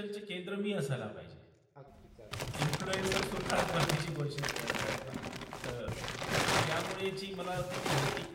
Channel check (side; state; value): both; identical; correlation 1.00